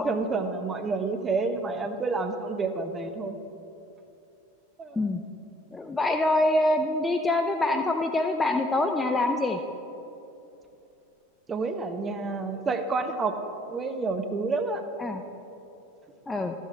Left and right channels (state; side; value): normal; both; correlation 0.63